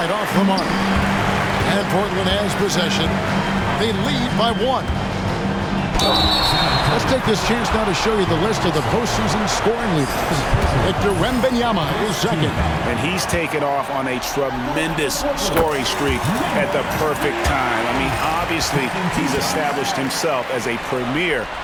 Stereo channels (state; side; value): identical; both; correlation 1.00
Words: off the mark. And Portland has possession. They lead by 1. Let's take this chance now to show you the list of the postseason scoring leaders. Victor Wembanyama is second. And he's taken off on a tremendous scoring streak at the perfect time. I mean, obviously, he's established himself as a premier